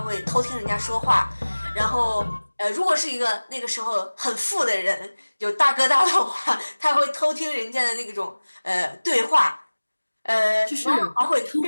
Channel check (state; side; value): inverted; both; correlation -1.00